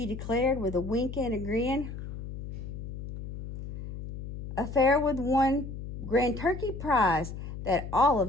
declared with a wink and a grin. A fair with one grand turkey prize that all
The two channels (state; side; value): noise; left; hum, 8 dB below the sound